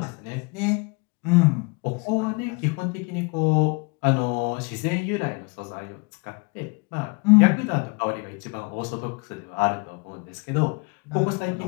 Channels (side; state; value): right; quieter; 29.9 dB